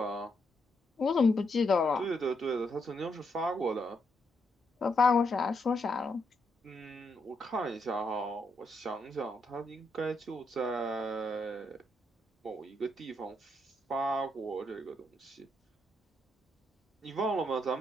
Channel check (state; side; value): normal; both; correlation 0.78